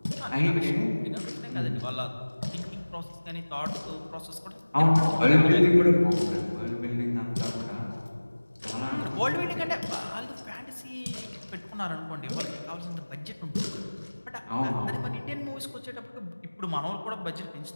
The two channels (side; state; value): both; inverted; correlation -1.00